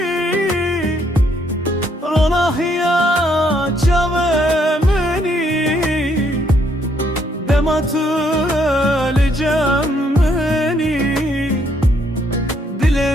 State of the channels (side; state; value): both; normal; correlation 0.70